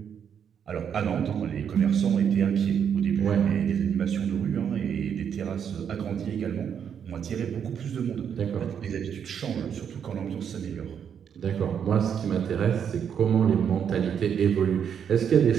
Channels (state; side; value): quieter; left; 8.0 dB